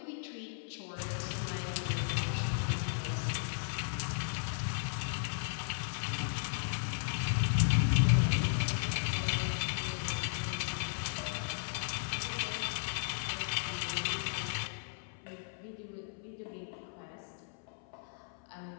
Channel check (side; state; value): right; silent; 54 dB below the other